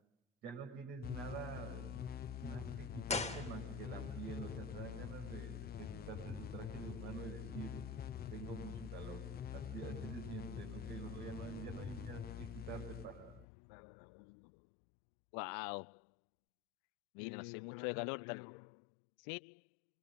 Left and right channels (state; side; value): drops out; right; at 13.5 s